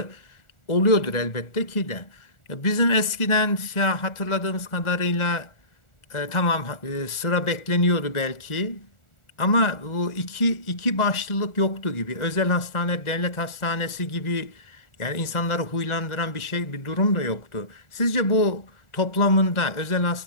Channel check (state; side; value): late; right; 1.4 ms